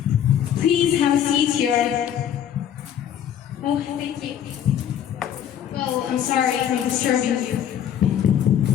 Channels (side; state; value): right; quieter; 9.7 dB